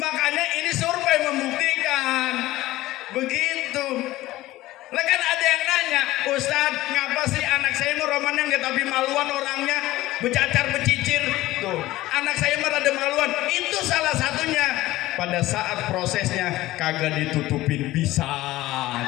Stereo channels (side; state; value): right; quieter; 16.9 dB